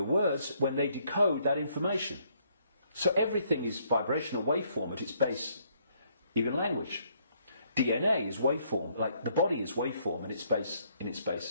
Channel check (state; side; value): inverted; both; correlation -0.69